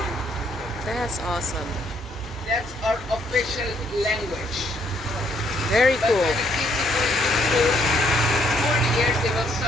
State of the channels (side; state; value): both; normal; correlation 0.69